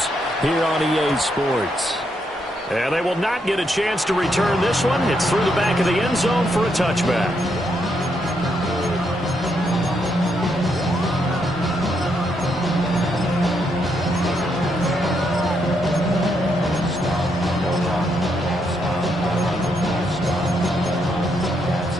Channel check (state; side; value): normal; both; correlation 0.78